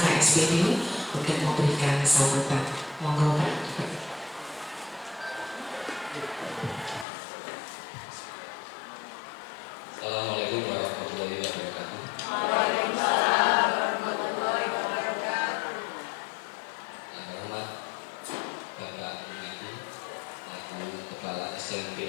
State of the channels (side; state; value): right; drops out; at 7.1 s